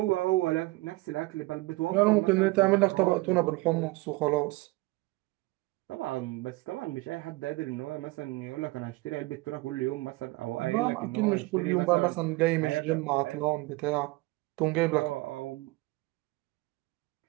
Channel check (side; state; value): left; quieter; 22.1 dB